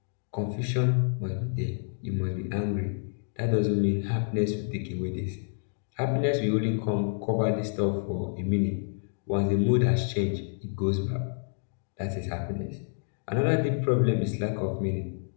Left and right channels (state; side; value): silent; right; digital silence